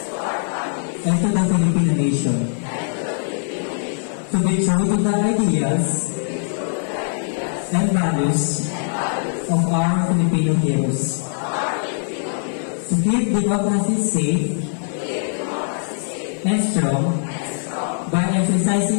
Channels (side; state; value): right; silent; digital silence